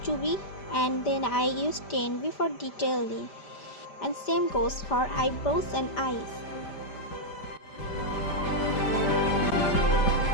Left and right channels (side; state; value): right; late; 5.0 ms